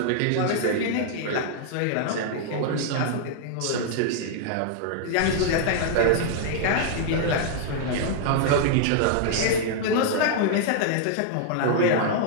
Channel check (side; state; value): both; different; correlation -0.01